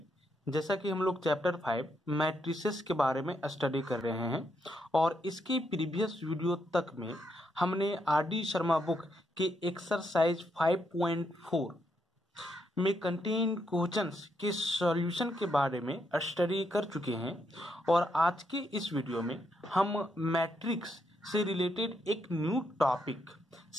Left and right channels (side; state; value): both; normal; correlation 0.79